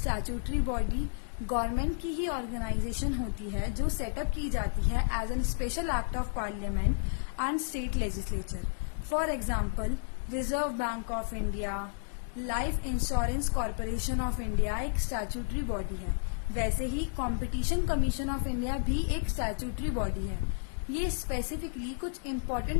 body government की ही ऑर्गेनाइजेशन होती है जो सेटअप की जाती है as an special act of parliament and state legislature. For example, reserve bank of India, life insurance corporation of India एक statutory body है। वैसे ही कंपटीशन कमीशन ऑफ इंडिया भी एक स्टैट्यूटरी बॉडी है। ये स्पेसिफिकली कुछ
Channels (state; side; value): silent; right; digital silence